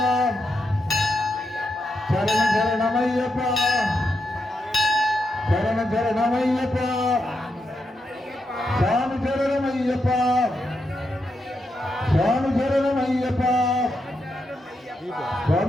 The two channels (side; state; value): both; normal; correlation 0.84